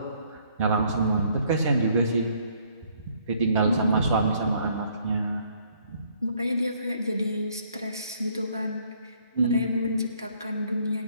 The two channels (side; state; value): both; inverted; correlation -0.65